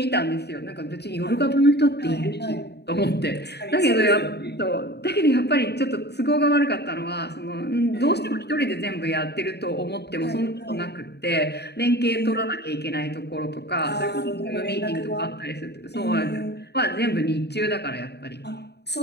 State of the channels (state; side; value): late; right; 0.48 ms